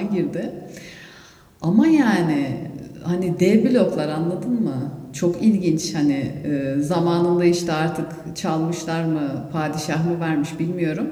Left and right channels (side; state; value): both; identical; correlation 1.00